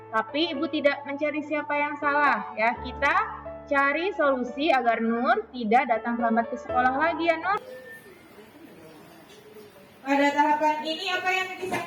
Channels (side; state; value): both; identical; correlation 1.00